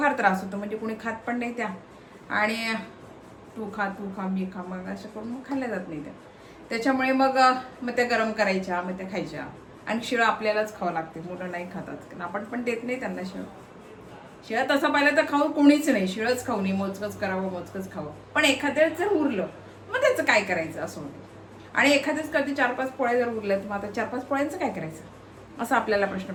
त्रास होतो. म्हणजे कोणी खात पण नाही त्या, आणि तू खा मी खा, मग असं करून मग खाल्ल्या जात नाही त्या. त्याच्यामुळे मग त्या गरम करायच्या, मग त्या खायच्या. आणि शिळं आपल्यालाच खावं लागते, मुलं नाही खातात कारण आपण पण देत नाही त्यांना शिळं. शिळं तसं पाहिलं तर खाऊ कोणीच नाही, शिळच खाऊ नये, मोजकच करावं, मोजकच खावं. पण एखाद्याच जर उरलं मग त्याचं काय करायचं असं होतं. आणि एखाद्याच कधी 4-5 पोळ्या जर उरल्या तर मग आता 4-5 पोळ्यांचं काय करायचं असा आपल्याला प्रश्न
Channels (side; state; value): both; identical; correlation 1.00